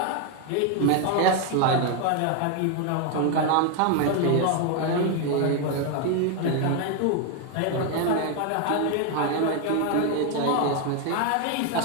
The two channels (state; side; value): different; both; correlation 0.01